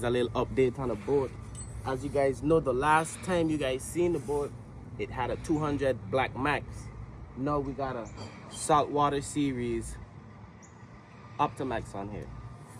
a little update on the boat. As you guys know, the last time you guys seen the boat, it had a 200 Blackmax. Now we got a saltwater series Optimax on here.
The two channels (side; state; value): both; identical; correlation 1.00